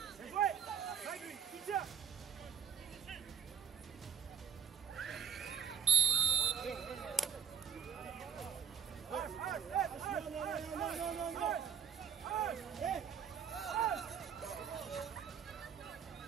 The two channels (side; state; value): left; quieter; 7.9 dB